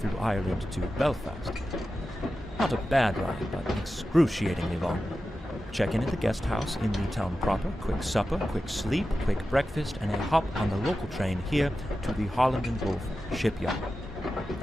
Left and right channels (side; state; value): both; normal; correlation 0.92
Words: Ireland to Belfast. Not a bad ride, but excruciatingly long. Check-in at the guest house in the town proper, quick supper, quick sleep, quick breakfast, and a hop on the local train here to the Holland and Wolff shipyard.